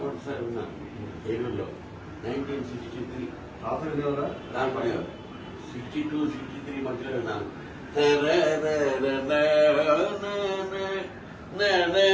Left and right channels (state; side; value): identical; both; correlation 1.00